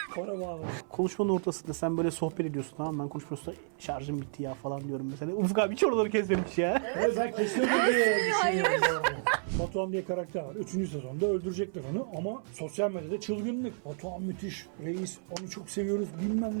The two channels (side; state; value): left; silent; 57 dB below the other